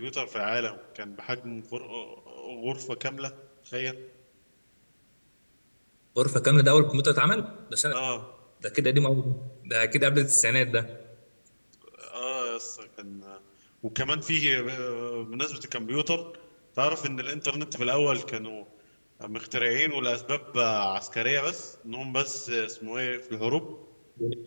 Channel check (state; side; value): inverted; both; correlation -1.00